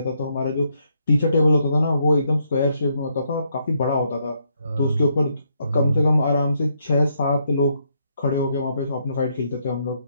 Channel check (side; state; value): both; inverted; correlation -0.76